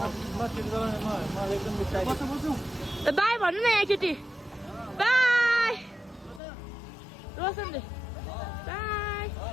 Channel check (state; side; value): drops out; right; at 6.4 s